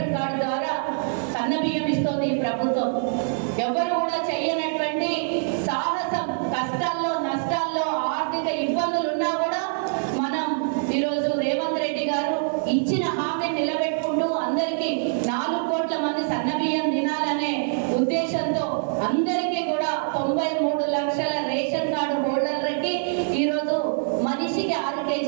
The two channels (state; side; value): silent; left; digital silence